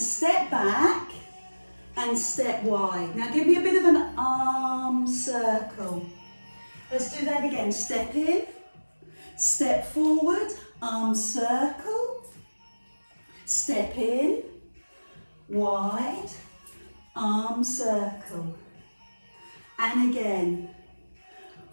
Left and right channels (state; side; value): inverted; both; correlation -1.00